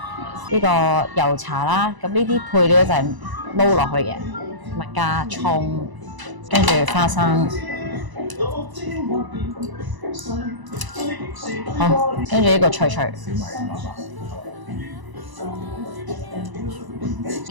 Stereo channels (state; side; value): late; left; 1.0 ms